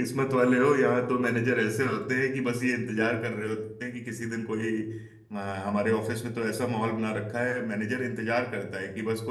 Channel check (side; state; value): both; identical; correlation 1.00